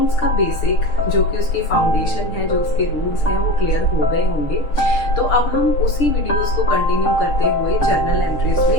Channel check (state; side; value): late; right; 6.7 ms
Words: का बेसिक जो कि उसकी फाउंडेशन है, जो उसके रूल्स हैं, वो क्लियर हो गए होंगे। तो अब हम उसी वीडियोस को कंटिन्यू करते हुए जर्नल एंट्रीज